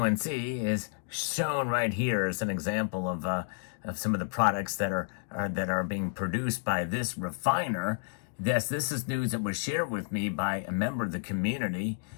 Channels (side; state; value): right; silent; digital silence